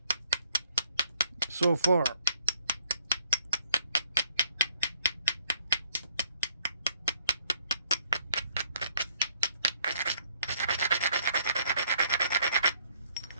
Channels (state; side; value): inverted; both; correlation -0.66